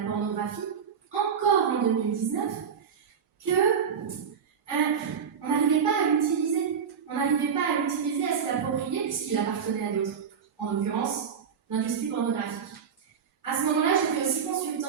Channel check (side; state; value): left; quieter; 7.0 dB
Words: pornographie, encore en 2019, que on n'arrivait pas à l'utiliser. On n'arrivait pas à l'utiliser, à se l'approprier, puisqu'il appartenait à d'autres, en l'occurrence l'industrie pornographique. À ce moment-là, j'étais aussi